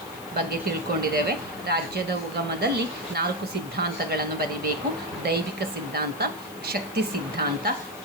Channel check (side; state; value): left; noise; hiss, 18 dB below the sound